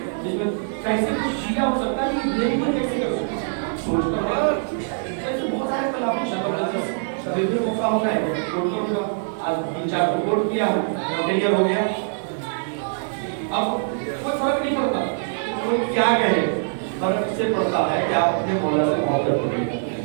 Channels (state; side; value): silent; left; digital silence